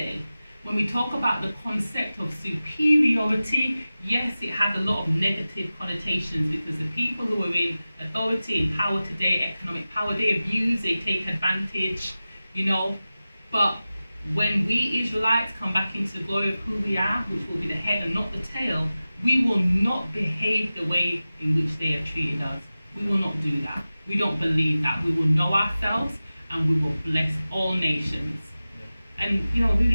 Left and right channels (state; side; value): inverted; both; correlation -0.96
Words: When we talk about the concept of superiority, yes, it has a lot of negative connotations, because the people who are in authority and power today, economic power, they abuse, they take advantage, But when we Israelites come back into the glory of who we are, which will be the head and not the tail, we will not behave the way in which they have treated us. We will not do that. We don't believe that. We will know ourselves and we will bless all nations. And